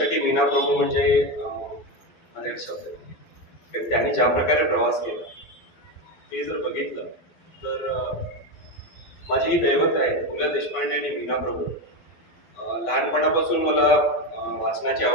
मीना प्रभू म्हणजे माझा एक शब्द आहे. त्यांनी ज्या प्रकारे प्रवास केला ते जर बघितलं तर माझी ही दैवत आहे. पु ल देशपांडे आणि मीना प्रभू. लहानपणापासून मला वाचनाची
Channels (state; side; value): late; right; 12 ms